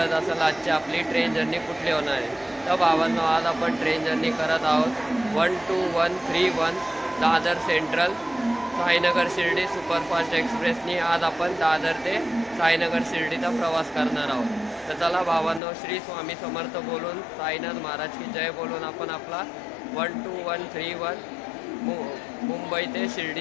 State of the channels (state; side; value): drops out; right; at 15.6 s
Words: असेल आजची आपली ट्रेन जर्नी कुठली होणार आहे. तर भावांनो, आज आपण ट्रेन जर्नी करत आहोत 12131 दादर सेंट्रल साईनगर शिर्डी सुपरफास्ट एक्सप्रेसनी. आज आपण दादर ते साईनगर शिर्डीचा प्रवास करणार आहोत. तर चला भावांनो, श्री स्वामी समर्थ बोलून, साईनाथ महाराज की जय बोलून आपण आपला 12131 मुंबई ते